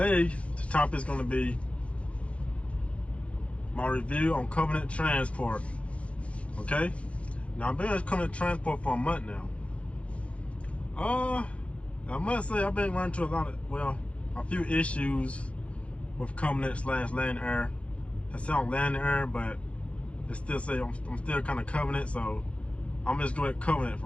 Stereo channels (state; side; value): late; right; 0.062 ms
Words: the topic is going to be my review on Covenant Transport. Okay? Now, I've been with Covenant Transport for a month now. I must say, I've been running into a few issues with Covenant / Land Air. I sound Land Air, but it still say I'm still kind of Covenant, so I'm just going with Covenant